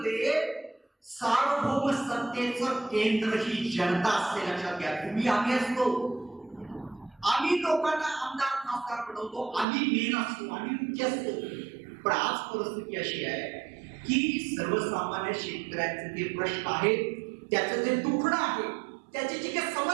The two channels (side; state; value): left; drops out; at 9.7 s